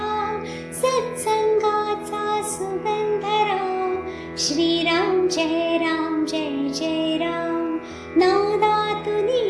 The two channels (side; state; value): both; identical; correlation 1.00